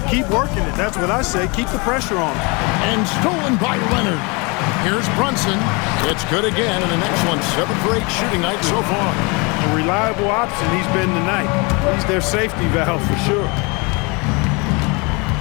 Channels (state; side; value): quieter; right; 29.0 dB